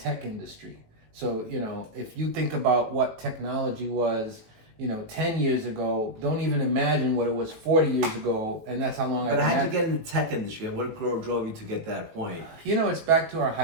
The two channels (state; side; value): late; left; 18 ms